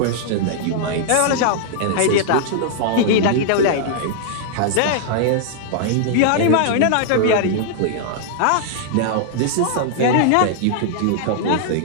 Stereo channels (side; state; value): both; different; correlation -0.01